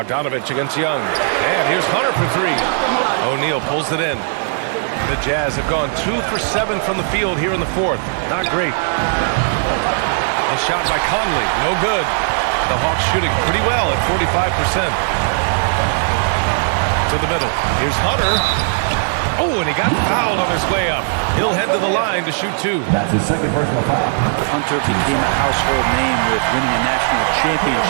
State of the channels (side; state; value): left; silent; digital silence